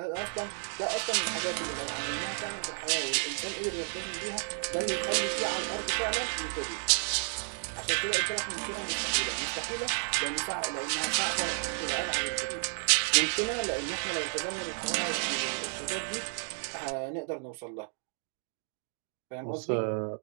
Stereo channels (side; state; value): left; silent; digital silence